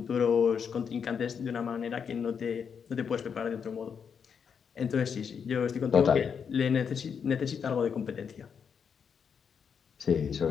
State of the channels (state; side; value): quieter; right; 6.8 dB